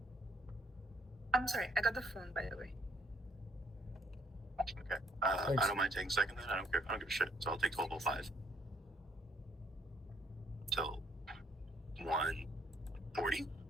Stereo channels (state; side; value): normal; both; correlation 0.65